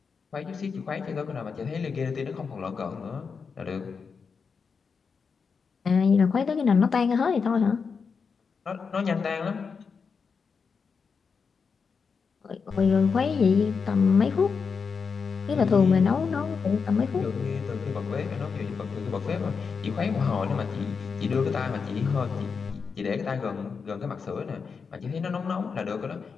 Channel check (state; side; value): quieter; right; 5.5 dB